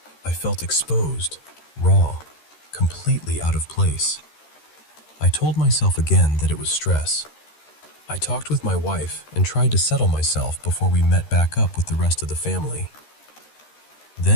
I felt exposed, raw, completely out of place. I told myself again that it was stress. I talked with my wife and tried to settle myself before we met back up with the rest of the family.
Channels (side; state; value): right; late; 13 ms